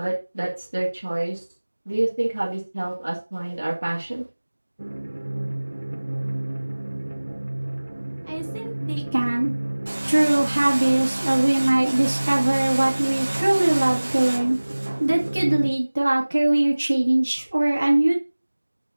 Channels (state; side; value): inverted; both; correlation -1.00